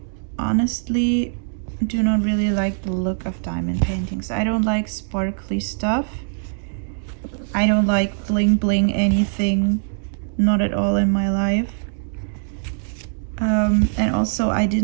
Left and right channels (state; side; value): silent; left; digital silence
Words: honestly do not really like the look of diamond paintings. I don't like sparkly stuff. I don't like bling bling anything, not at all in my life. And also I